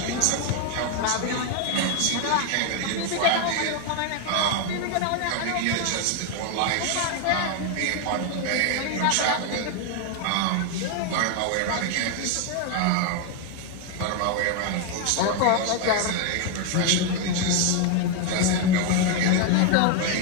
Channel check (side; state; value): both; different; correlation 0.01